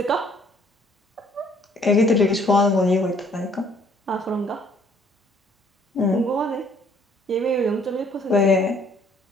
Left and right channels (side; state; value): both; normal; correlation 0.61